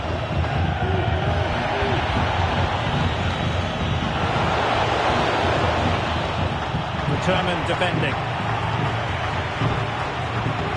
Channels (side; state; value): both; identical; correlation 1.00